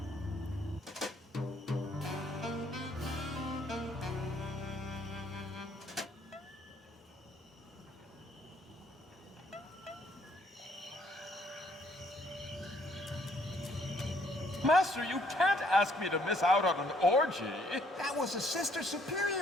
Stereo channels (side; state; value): both; normal; correlation 0.66